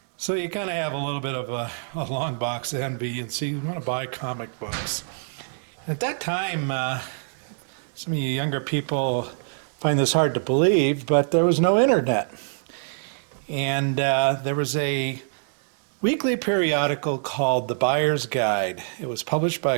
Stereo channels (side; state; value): left; silent; digital silence